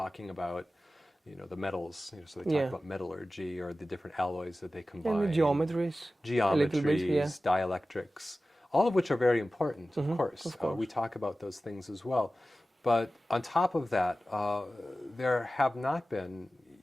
about, the metals. So they talk about metallurgy or the different alloys that they combine. And the geometries. Geometries, dielectrics, all of which are very important, of course. We talk about those things as well. But on top of that, there have not been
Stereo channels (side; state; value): both; normal; correlation 0.96